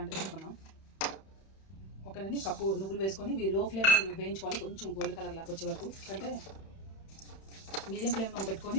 తీసుకుందాం. ఓకేనండి. కప్పు నువ్వులు వేసుకొని ఇవి లో ఫ్లేమ్ వేయించుకోవాలి. కొంచెం గోల్డ్ కలర్ లాగా వచ్చే వరకు. అంటే మీడియం ఫ్లేమ్లో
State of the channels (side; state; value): right; late; 31 ms